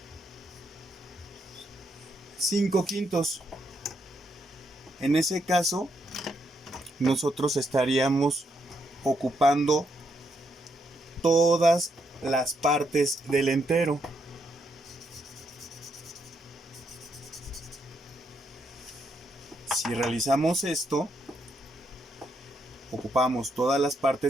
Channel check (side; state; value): both; normal; correlation 0.78